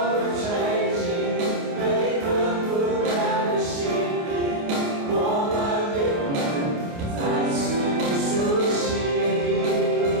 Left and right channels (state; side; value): late; left; 29 ms